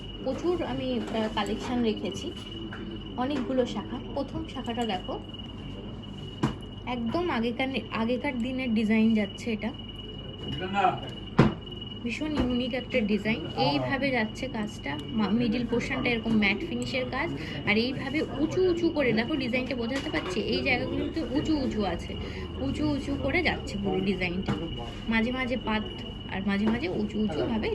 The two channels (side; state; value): both; identical; correlation 1.00